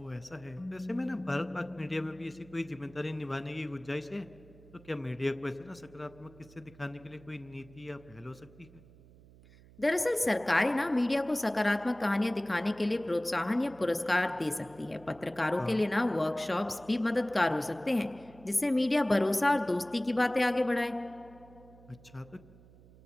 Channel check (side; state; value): right; noise; hum, 23 dB below the sound